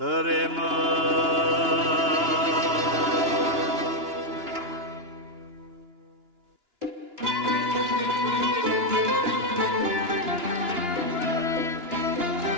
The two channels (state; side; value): late; left; 2.9 ms